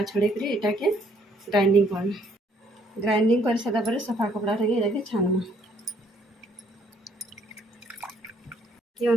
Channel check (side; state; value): both; normal; correlation 0.65